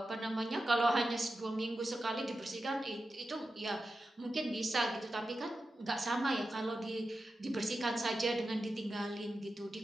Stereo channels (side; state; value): both; normal; correlation 0.91